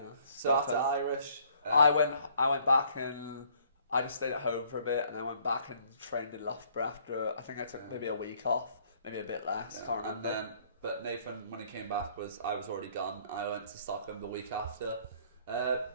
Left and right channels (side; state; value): both; inverted; correlation -0.62